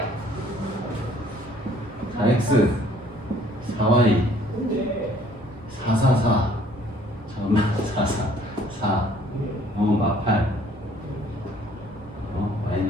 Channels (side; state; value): both; normal; correlation 0.59